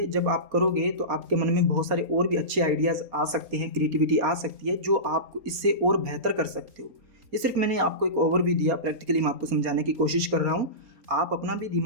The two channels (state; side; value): late; left; 4.3 ms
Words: जब आप करोगे तो आपके मन में बहुत सारे और भी अच्छे आइडियाज़ आ सकते हैं, क्रिएटिविटी आ सकती है, जो आप इससे और बेहतर कर सकते हो। ये सिर्फ मैंने आपको एक ओवरव्यू दिया, प्रैक्टिकली मैं आपको समझाने की कोशिश कर रहा हूँ। आप अपना भी